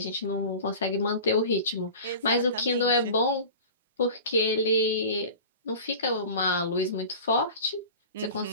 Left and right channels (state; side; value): inverted; both; correlation -0.36